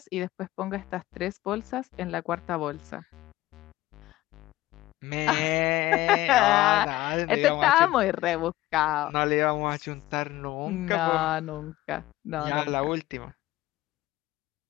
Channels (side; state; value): right; quieter; 16.7 dB